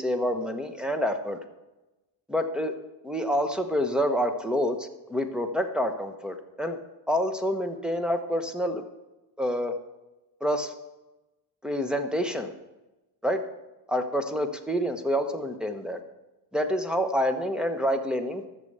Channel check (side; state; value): both; normal; correlation 0.61